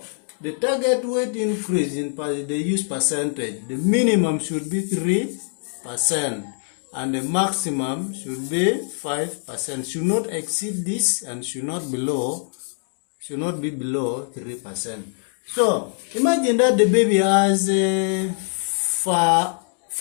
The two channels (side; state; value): right; silent; 63 dB below the other